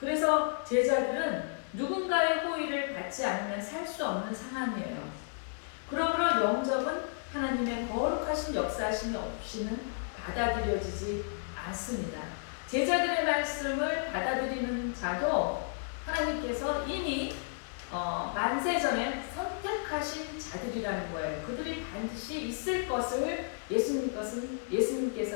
제자들은 누군가의 호의를 받지 않으면 살 수 없는 상황이에요. 그러므로 영접은 하나님의 거룩하신 역사하심이 없이는 받아들여지지 않습니다. 제자들의 말씀을 받아들이는 자도 하나님께서 이미 만세전에 선택하신 자들이라는 거예요. 그들이 반드시 있을 것을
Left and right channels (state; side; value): silent; right; 55 dB below the other